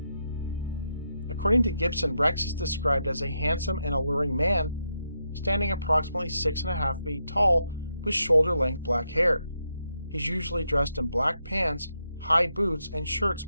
According to Gibson, Rex is described as a handsome and alluring man, standing approximately 6.5 feet tall with shoulder-length black hair. He's usually dressed in black pants, high boots, and shirts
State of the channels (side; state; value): both; inverted; correlation -0.82